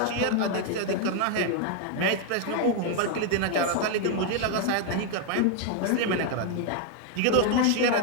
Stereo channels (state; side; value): different; both; correlation 0.00